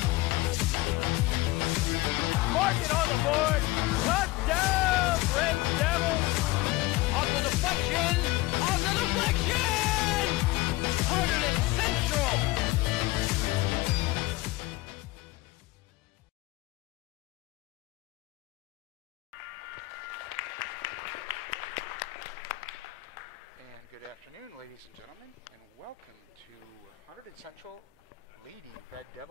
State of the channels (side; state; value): right; quieter; 19.2 dB